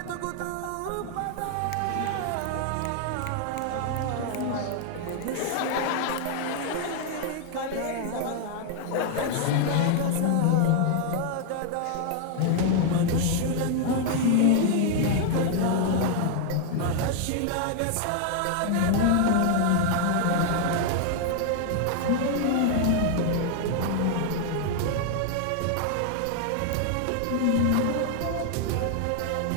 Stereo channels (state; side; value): different; both; correlation 0.00